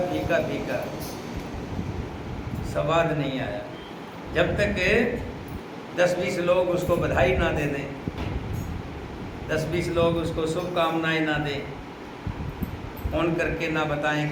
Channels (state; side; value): identical; both; correlation 1.00